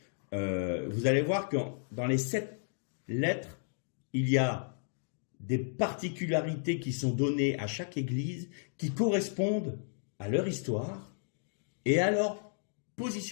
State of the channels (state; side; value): silent; right; digital silence